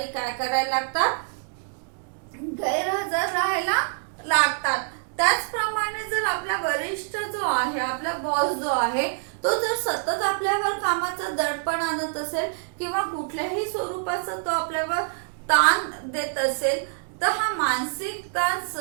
काय करायला लागतात, गैरहजर राहायला लागतात. त्याचप्रमाणे जर आपला वरिष्ठ जो आहे, आपला बॉस जो आहे, तो जर सतत आपल्यावर कामाचं दडपण आणत असेल किंवा कुठल्याही स्वरूपाचा तो आपल्यावर ताण देत असेल तर हा मानसिक ताण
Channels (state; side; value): silent; left; digital silence